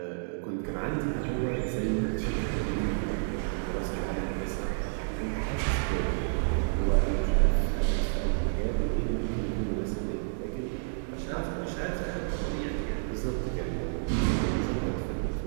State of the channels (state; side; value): silent; left; digital silence